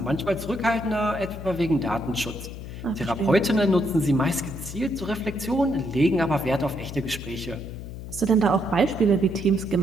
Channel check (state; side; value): noise; left; hum, 10 dB below the sound